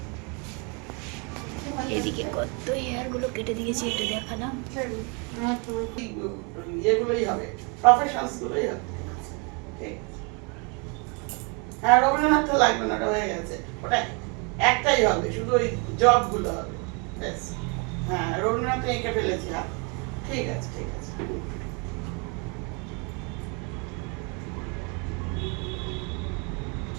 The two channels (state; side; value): quieter; left; 33.3 dB